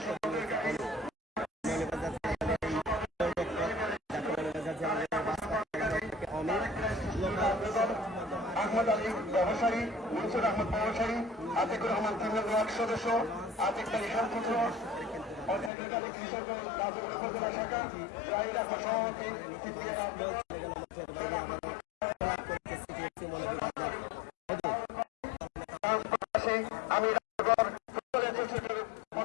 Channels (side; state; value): right; drops out; at 15.7 s